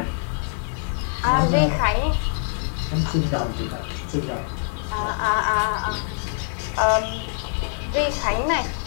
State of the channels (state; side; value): silent; right; digital silence